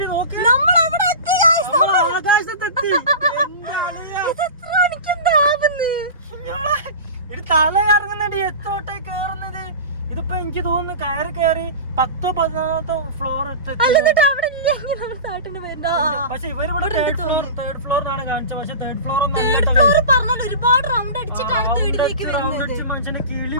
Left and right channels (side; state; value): both; inverted; correlation -0.31